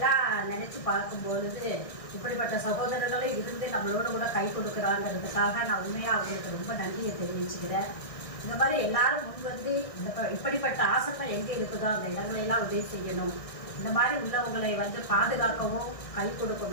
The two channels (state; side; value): late; right; 1.6 ms